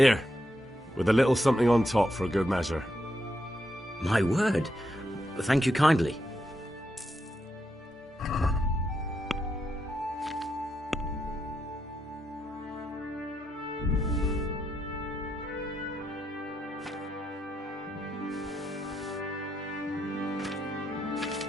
with a little something on top for a good measure. My word. Thank you kindly.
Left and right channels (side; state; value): both; normal; correlation 0.81